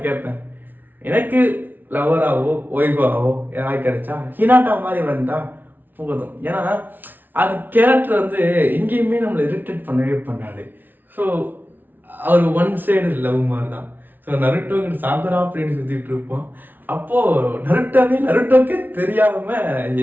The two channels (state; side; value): late; left; 0.088 ms